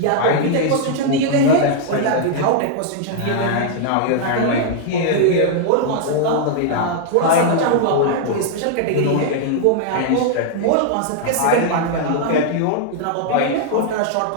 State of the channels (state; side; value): different; both; correlation -0.01